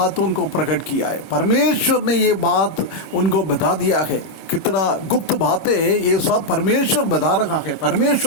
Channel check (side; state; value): right; late; 26 ms